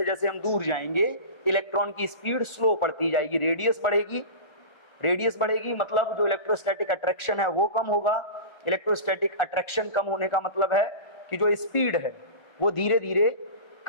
जैसे हम दूर जाएंगे इलेक्ट्रॉन की स्पीड स्लो बढ़ती जाएगी, रेडियस बढ़ेगी, रेडियस बढ़ेगी मतलब जो इलेक्ट्रोस्टैटिक अट्रैक्शन है वो कम होगा। इलेक्ट्रोस्टैटिक अट्रैक्शन कम होने का मतलब है कि जो स्पीड है वो धीरे धीरे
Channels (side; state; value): right; late; 1.3 ms